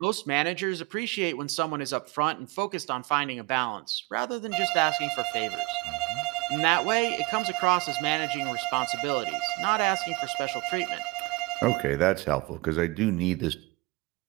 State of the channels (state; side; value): quieter; left; 24.3 dB